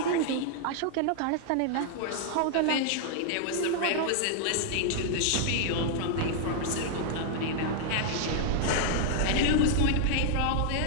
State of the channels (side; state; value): both; different; correlation -0.01